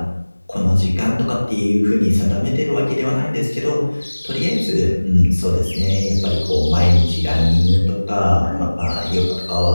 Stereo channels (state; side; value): inverted; both; correlation -1.00